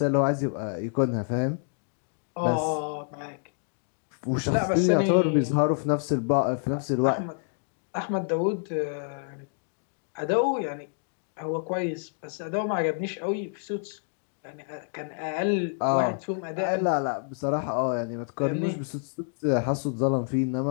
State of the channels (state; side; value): silent; right; digital silence